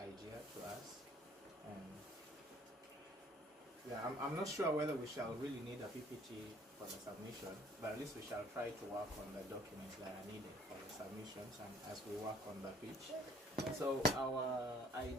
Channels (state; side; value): normal; both; correlation 0.57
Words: to us. And yeah, I'm not sure whether we shall really need a PPT for the submission, but at least we shall try to work on the documents that are needed for the submissions and as we work on the pitch. So our